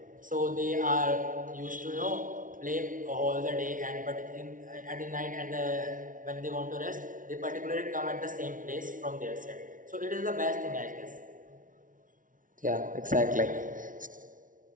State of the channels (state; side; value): late; left; 0.38 ms